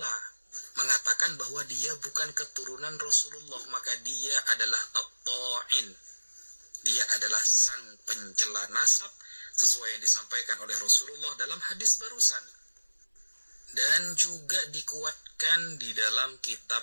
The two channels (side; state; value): both; inverted; correlation -1.00